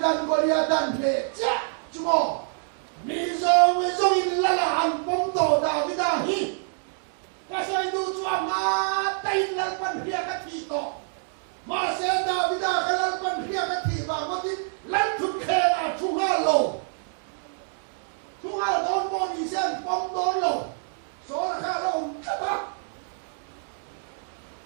Goliath nề chả chú bố mi dòng in là hành bông tổ David hi cái xây du chuan na tay lần phân phía cái thị tổ mà sẽ David cái lần phân phía cái thị và có tin lần chút khe là chung hai đón bò đi xem bom đón lầu số là khá lầu chất á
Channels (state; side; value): silent; left; 58 dB below the other